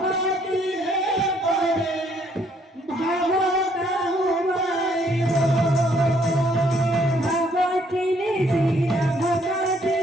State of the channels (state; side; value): normal; both; correlation 0.66